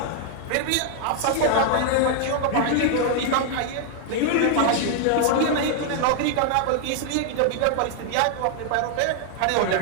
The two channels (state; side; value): different; both; correlation 0.00